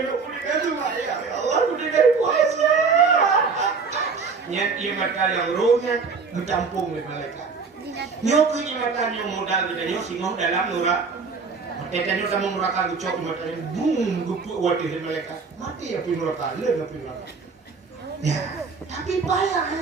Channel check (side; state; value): left; quieter; 4.9 dB